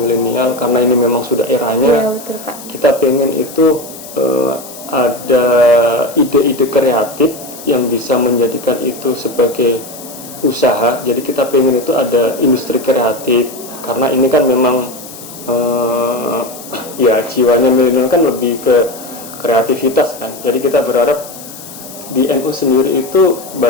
karena ini memang sudah eranya, betul, Pak. Kita pengen itu ada ide-ide kreatif yang bisa menjadikan itu sebagai usaha. Jadi kita pengen itu ada industri kreatif, karena ini kan memang ya jiwanya milenial kan lebih ke kreativitas kan. Jadi kita berharap di NU sendiri itu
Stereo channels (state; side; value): noise; left; hiss, 15 dB below the sound